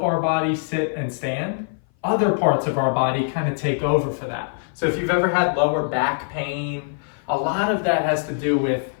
our body sit and stand, other parts of our body kind of take over for that. So if you've ever had lower back pain, a lot of that has to do with,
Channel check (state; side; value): silent; right; 57 dB below the other